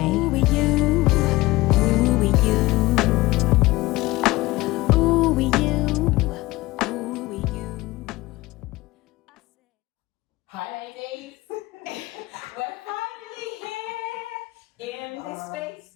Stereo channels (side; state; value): right; quieter; 19.7 dB